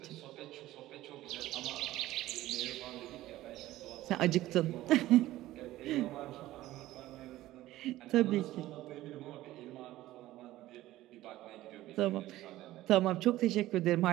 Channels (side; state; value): left; quieter; 15.7 dB